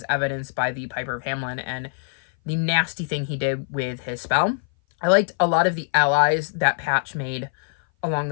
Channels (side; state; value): right; silent; 58 dB below the other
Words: evidenced by the Piper of Hamelin and the nasty thing he did with his spell. I liked a lot of the allies that Patch made along